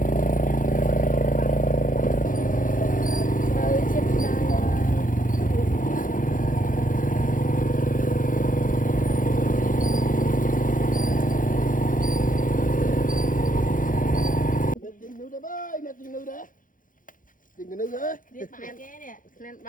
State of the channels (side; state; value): right; late; 0.39 ms